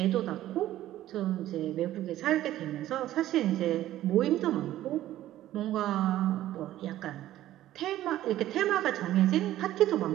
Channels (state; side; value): quieter; left; 13.8 dB